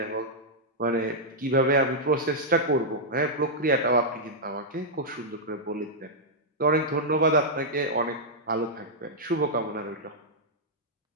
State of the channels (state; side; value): normal; both; correlation -0.07